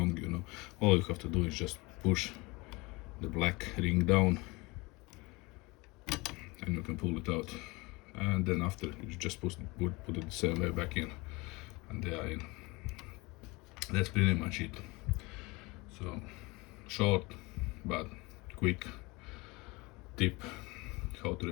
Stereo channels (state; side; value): quieter; right; 24.4 dB